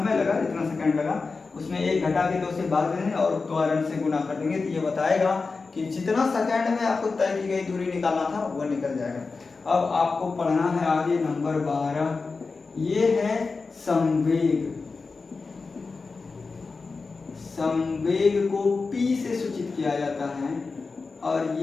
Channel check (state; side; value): quieter; right; 4.3 dB